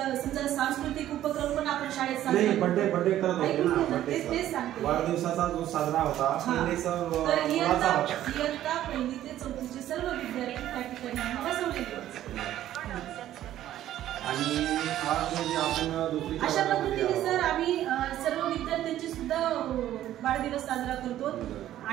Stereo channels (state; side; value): quieter; left; 12.7 dB